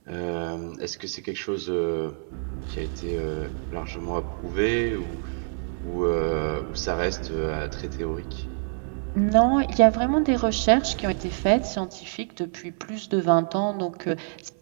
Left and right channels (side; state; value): left; silent; 61 dB below the other